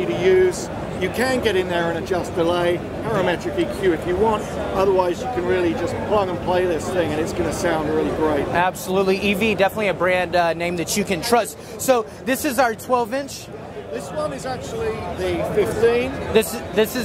to use. You can get in there and adjust delay, parametric EQ if you want. Otherwise, you can really just plug and play this thing, and it's going to sound really great. Absolutely. EV, definitely a brand name that you can trust. So this is our 12-inch. This one is actually the 15. This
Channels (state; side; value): identical; both; correlation 1.00